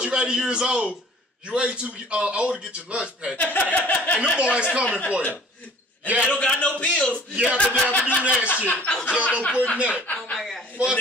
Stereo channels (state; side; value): normal; both; correlation 0.51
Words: you 80 years old, you ain't too old to get your lunch packed. And them boys coming for you. And they don't got no pills. Yeah, but they have to do that shit. Y'all don't put in that. Oh my God. fuck